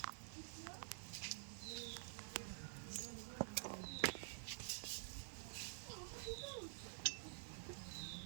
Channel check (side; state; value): left; silent; digital silence